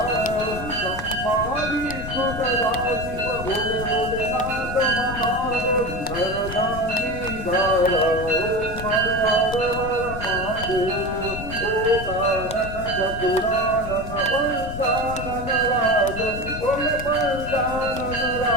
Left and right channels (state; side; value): noise; left; rumble, 9 dB below the sound